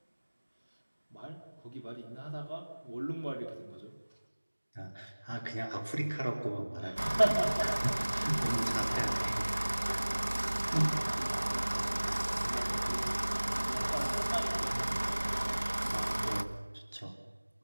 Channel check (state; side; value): inverted; both; correlation -1.00